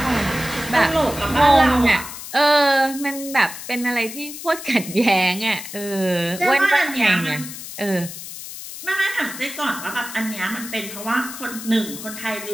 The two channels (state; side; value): noise; left; hiss, 11 dB below the sound